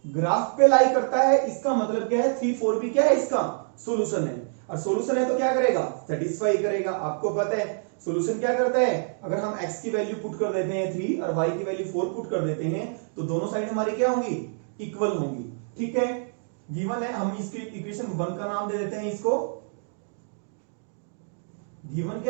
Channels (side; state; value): left; silent; digital silence